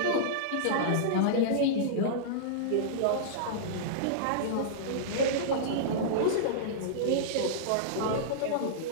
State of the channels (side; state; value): both; different; correlation -0.03